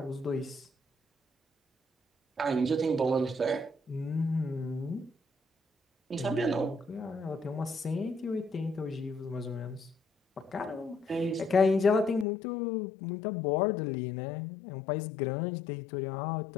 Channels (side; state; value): right; drops out; at 12.2 s